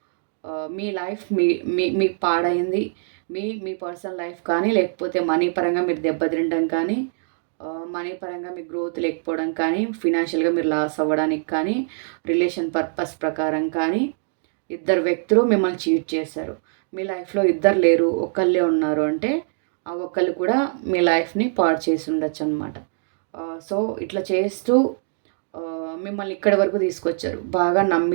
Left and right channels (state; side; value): silent; left; digital silence